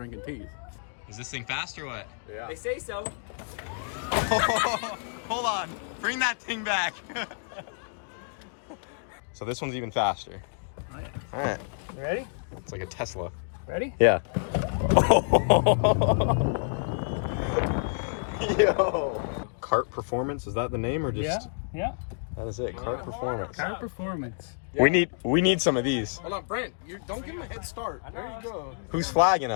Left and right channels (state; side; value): silent; right; digital silence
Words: teas. Is this thing fast or what? Yeah. They say so. Hold on. Bring that thing back. So this one's even faster. Oh, yeah. All right. You ready? It's like a Tesla. Ready? Yeah. Yo. Kart Performance, is that the name or just? Yeah. That is it. Kart Performance. Kart Performance. We need some of these. Hold on, Brent. You don't give him a head start. There you go. Who's flagging